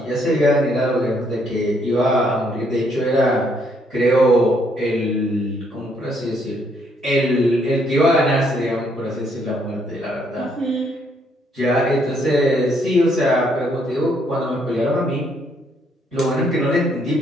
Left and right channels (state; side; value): normal; both; correlation 0.70